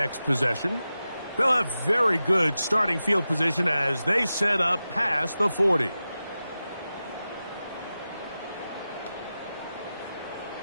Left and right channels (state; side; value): inverted; both; correlation -0.93